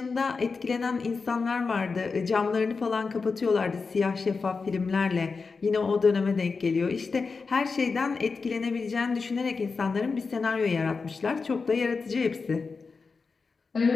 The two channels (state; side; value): quieter; right; 4.6 dB